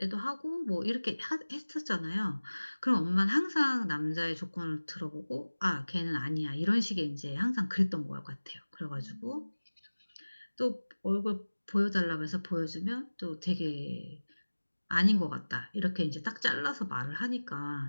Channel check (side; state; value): both; inverted; correlation -1.00